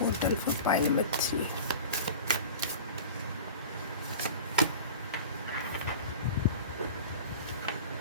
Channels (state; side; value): inverted; both; correlation -0.36